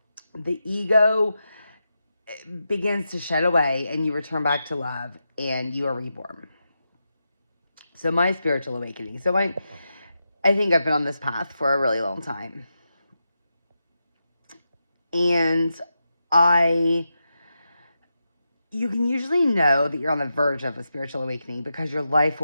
The ego begins to shed away and you return back to love and you are reborn. So my spiritual awakening. So I think I've been on this path for a really long time. And you can usually know that you're on the verge of a spiritual awakening because your life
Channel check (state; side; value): inverted; both; correlation -0.88